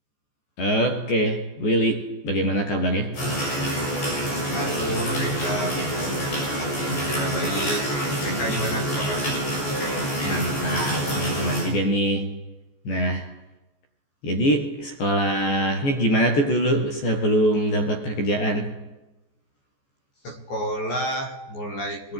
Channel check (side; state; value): right; late; 14 ms